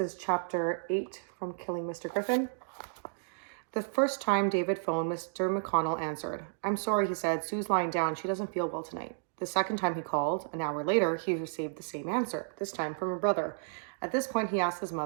chapter 8 from Killing Mr. Griffin. The first time David phoned, Mr. McConnell answered. I'm sorry, he said. Sue's lying down. She doesn't feel well tonight. The second time he called, an hour later, he received the same answer, this time from a brother. At this point, he asked his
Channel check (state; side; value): silent; left; digital silence